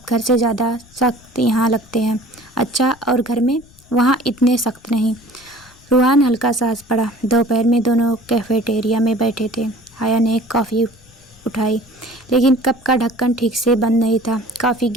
घर से ज़्यादा सख्त यहाँ लगते हैं। अच्छा, और घर में? वहाँ इतने सख्त नहीं। रूहान हल्का सा हंस पड़ा। दोपहर में दोनों कैफेटेरिया में बैठे थे। हया ने कॉफ़ी उठाई, लेकिन कप का ढक्कन ठीक से बंद नहीं था। कॉफ़ी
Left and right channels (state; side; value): noise; left; rumble, 27 dB below the sound